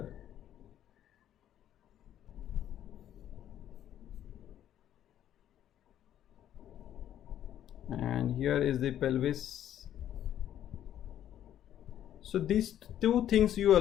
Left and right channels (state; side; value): quieter; right; 11.1 dB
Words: And here is the pelvis. So these two things you